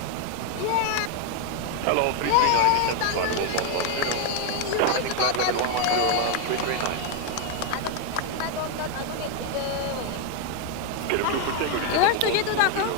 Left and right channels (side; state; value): both; different; correlation 0.01